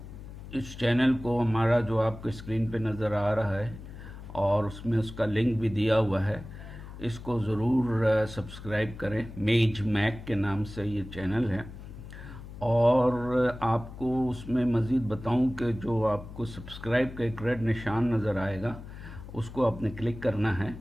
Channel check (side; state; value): left; noise; hum, 13 dB below the sound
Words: इस चैनल को हमारा जो आपके स्क्रीन पे नज़र आ रहा है और उसमें उसका लिंक भी दिया हुआ है, इसको ज़रूर सब्सक्राइब करें। मेज मैक के नाम से ये चैनल है। और आपको उसमें मज़ीद बताऊं कि जो आपको सब्सक्राइब का एक रेड निशान नज़र आएगा, उसको आपने क्लिक करना है।